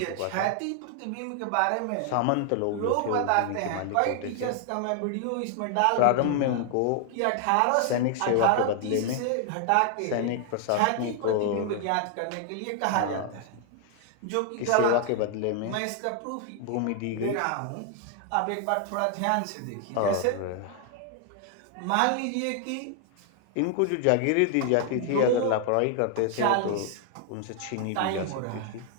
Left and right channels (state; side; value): different; both; correlation 0.00